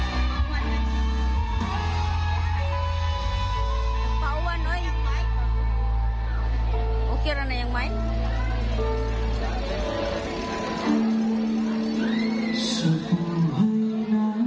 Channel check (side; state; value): both; identical; correlation 1.00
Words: Kira na yung mic? Sa buhay